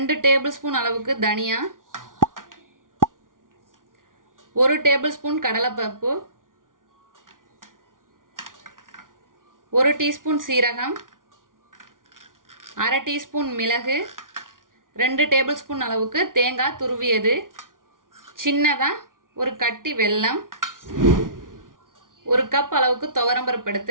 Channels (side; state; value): left; late; 0.89 ms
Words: டேபிள் ஸ்பூன் அளவுக்கு தனியா, 1 டேபிள் ஸ்பூன் கடலைப்பருப்பு, 1 டீஸ்பூன் சீரகம், அரை டீஸ்பூன் மிளகு, 2 டேபிள் ஸ்பூன் அளவுக்கு தேங்காய் துருவியது, சின்னதாக ஒரு கட்டி வெல்லம், 1 கப் அளவுக்கு துவரம்பருப்பு